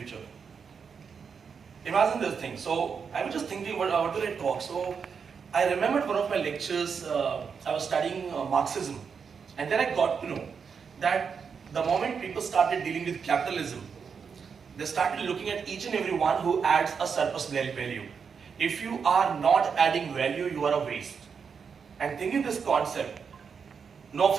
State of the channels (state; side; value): quieter; left; 6.2 dB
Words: Imagine this thing. So I was just thinking, what will I talk? So I remembered one of my lectures. I was studying Marxism, and then I got to know that the moment people started dealing with capitalism, they started looking at each and every one who adds a surplus value. If you are not adding value, you are a waste. And thinking this concept, no